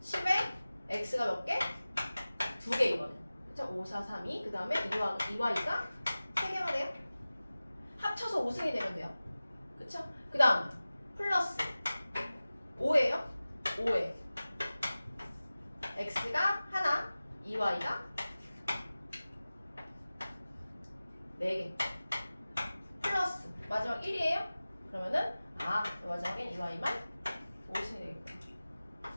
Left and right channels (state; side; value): inverted; both; correlation -0.97